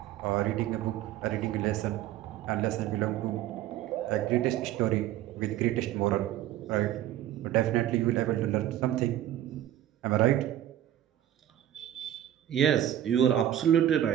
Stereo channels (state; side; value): quieter; left; 12.2 dB